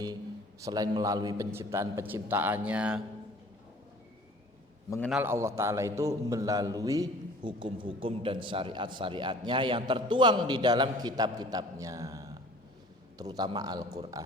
selain melalui penciptaan-penciptaannya. Mengenal Allah Ta'ala itu melalui hukum-hukum dan syariat-syariatnya yang tertuang di dalam kitab-kitabnya, terutama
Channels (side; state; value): both; normal; correlation 0.49